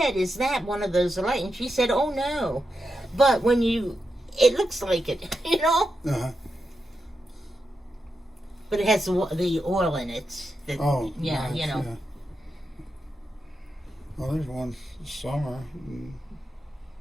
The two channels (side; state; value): both; normal; correlation 0.87